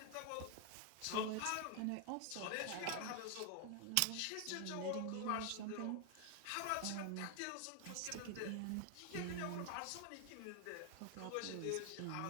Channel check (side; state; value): both; different; correlation 0.00